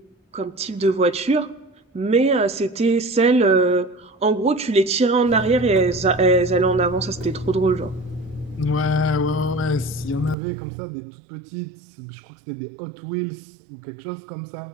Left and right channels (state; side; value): drops out; left; at 10.4 s